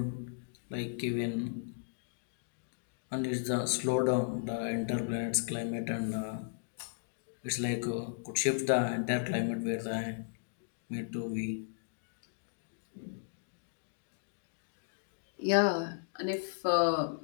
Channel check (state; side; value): silent; right; digital silence